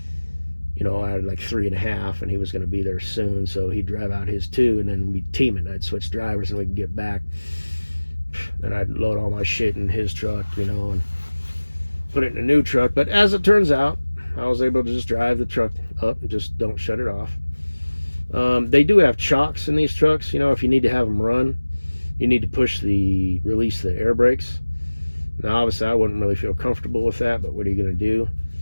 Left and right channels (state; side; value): inverted; both; correlation -1.00